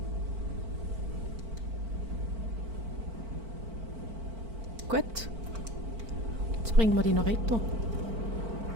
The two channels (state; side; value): late; left; 4.5 ms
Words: Gut. Jetzt bringen wir die noch retour.